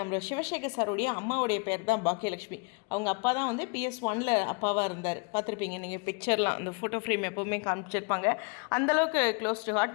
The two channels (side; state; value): right; quieter; 33.6 dB